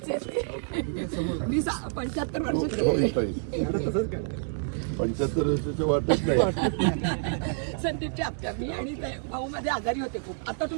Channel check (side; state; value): left; silent; digital silence